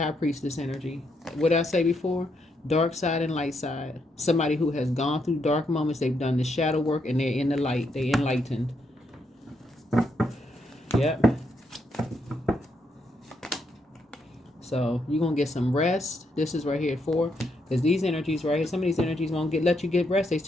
priestess energy. What did I say before? Dark side and light side. Somebody who has gone through dark moments. They've done the shadow work, and they're in the light. They're enlightened. Yep. So you're going to get some rest. This is right here for, because these energies right here, some of these energies won't let you get rest. They're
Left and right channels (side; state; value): both; normal; correlation 0.78